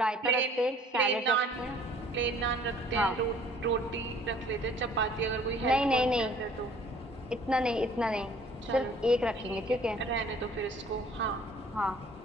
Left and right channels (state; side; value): normal; both; correlation 0.54